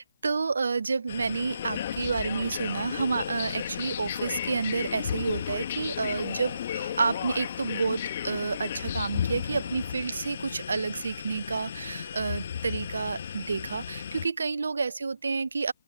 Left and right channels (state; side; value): inverted; both; correlation -0.83